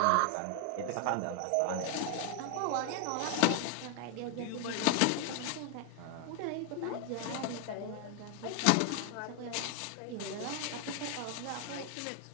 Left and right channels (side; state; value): both; different; correlation 0.00